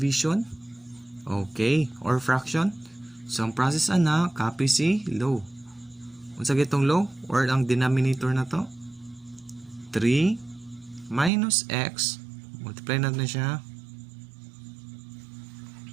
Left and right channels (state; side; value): drops out; left; at 11.3 s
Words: Okay, or fraction. So ang process ana copy si low. Unsa gitong low or ang denominator na to? 3 minus x. Multiply natin siya.